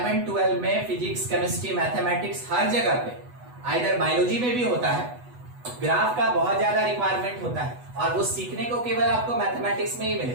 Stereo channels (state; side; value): late; left; 8.1 ms